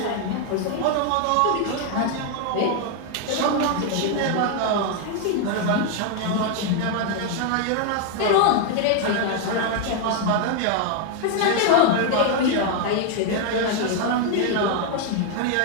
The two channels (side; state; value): both; different; correlation 0.00